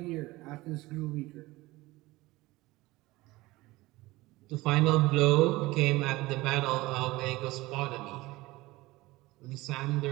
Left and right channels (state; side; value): quieter; left; 19.9 dB